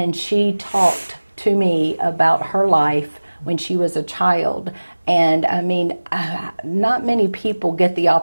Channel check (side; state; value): both; inverted; correlation -1.00